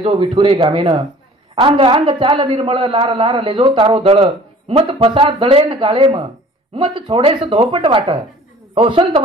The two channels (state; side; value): normal; both; correlation 0.49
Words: विठुरे गामेन अंग अंग चाल निर्मळ लार लार लेजो तारो दळ मत फसा दळेन गाळेम मत छोडेस धोपट वाट हो संत